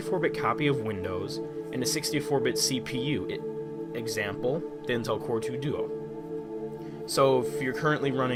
copy of Windows and a 64-bit CPU. Example, the Intel Core 2 Duo. So if you're currently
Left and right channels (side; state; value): both; identical; correlation 1.00